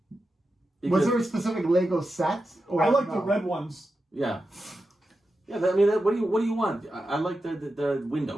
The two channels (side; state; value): both; normal; correlation 0.90